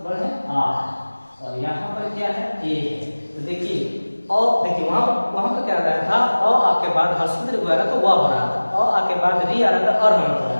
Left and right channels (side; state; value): both; inverted; correlation -1.00